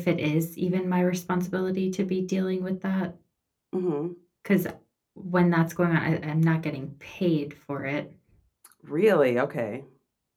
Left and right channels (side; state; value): both; identical; correlation 1.00